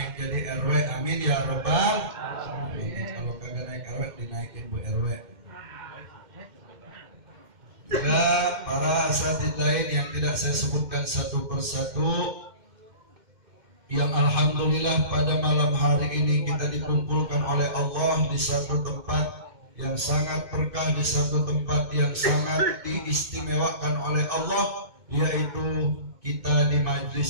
jadi RW, amin ya rabbal alamin. Kalau kagak naik RW, dinaikin Bu RW. Juga para asatidz lain yang tidak saya sebutkan satu persatu, yang alhamdulillah pada malam hari ini kita dikumpulkan oleh Allah di satu tempat yang sangat berkah, di satu tempat yang sangat diistimewakan oleh Allah, yaitu kita di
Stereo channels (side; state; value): left; late; 2.1 ms